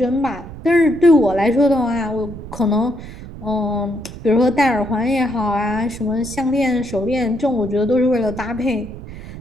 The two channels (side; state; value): right; noise; rumble, 13 dB below the sound